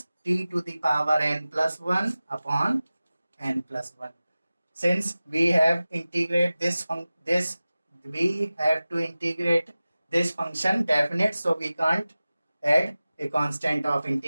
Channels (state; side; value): inverted; both; correlation -0.96